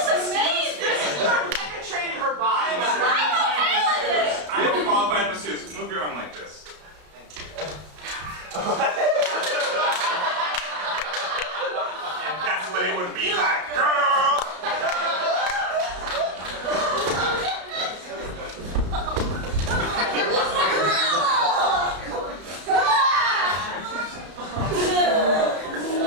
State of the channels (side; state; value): left; late; 33 ms